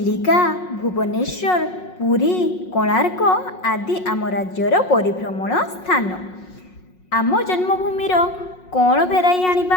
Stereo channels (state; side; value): late; right; 5.5 ms